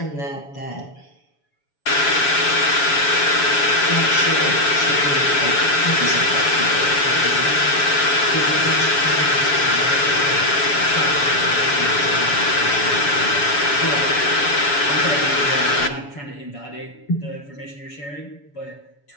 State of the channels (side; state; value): right; late; 7.0 ms